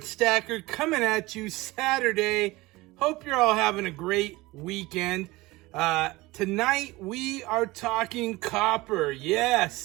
Stacker coming at you Saturday. Hope you're all having a great weekend. Tonight we are talking copper.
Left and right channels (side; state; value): left; quieter; 20.7 dB